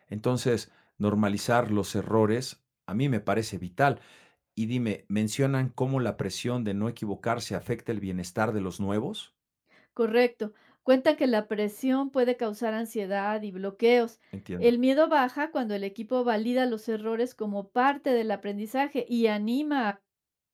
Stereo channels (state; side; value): identical; both; correlation 1.00